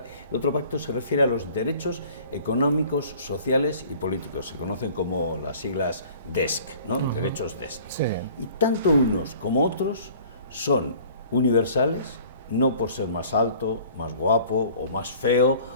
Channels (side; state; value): both; inverted; correlation -0.50